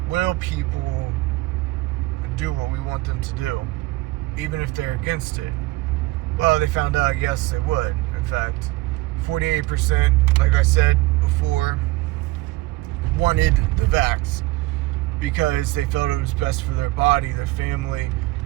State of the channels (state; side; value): quieter; left; 19.7 dB